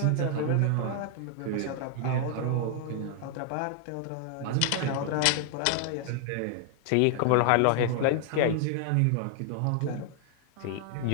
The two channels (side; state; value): both; different; correlation 0.00